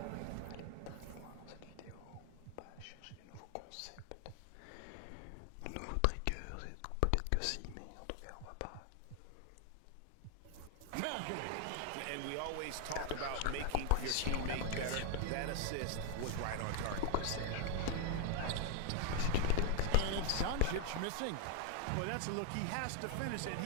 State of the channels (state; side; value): different; both; correlation 0.00